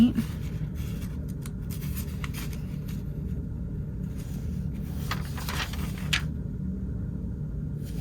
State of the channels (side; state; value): both; identical; correlation 1.00